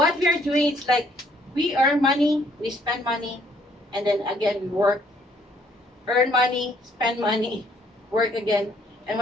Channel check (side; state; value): both; normal; correlation 0.65